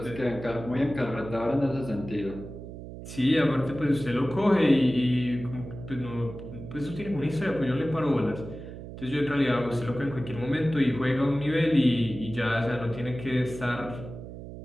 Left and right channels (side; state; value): right; noise; hum, 12 dB below the sound